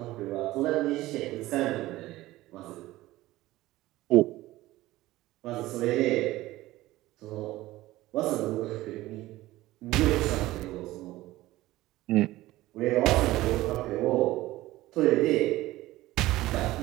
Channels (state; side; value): quieter; left; 17.2 dB